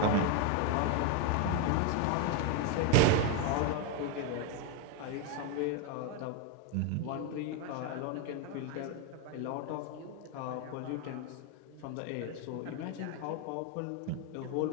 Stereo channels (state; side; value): different; both; correlation 0.02